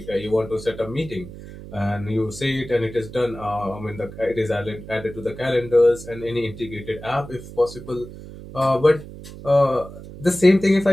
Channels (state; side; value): noise; right; hum, 14 dB below the sound